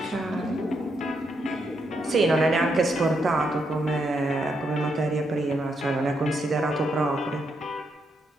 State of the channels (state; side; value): normal; both; correlation 0.79